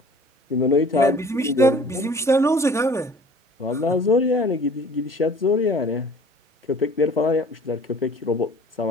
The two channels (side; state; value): both; normal; correlation 0.49